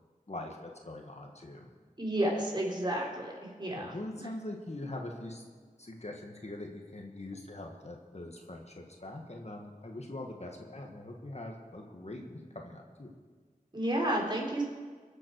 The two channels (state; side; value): normal; both; correlation 0.66